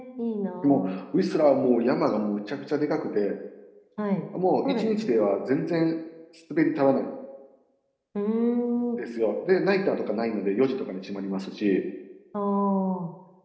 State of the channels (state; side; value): identical; both; correlation 1.00